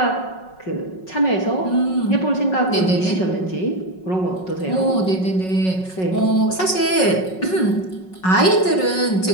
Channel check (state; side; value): late; right; 5.4 ms